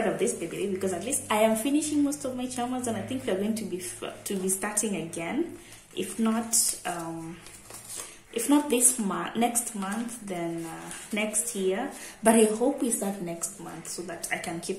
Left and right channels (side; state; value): both; identical; correlation 1.00